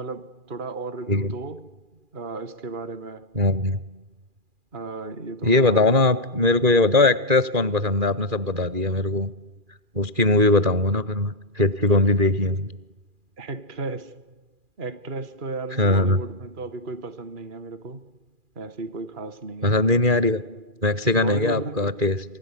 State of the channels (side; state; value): left; late; 2.4 ms